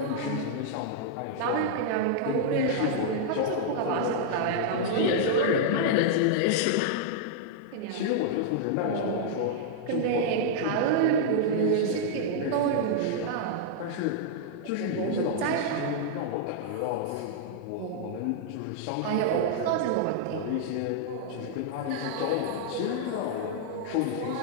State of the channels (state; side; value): different; both; correlation -0.01